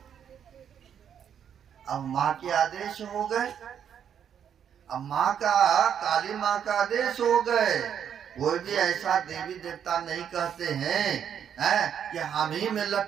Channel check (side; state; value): left; quieter; 8.6 dB